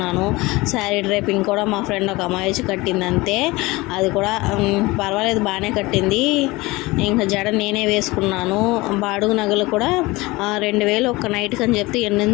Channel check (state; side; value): quieter; right; 21.8 dB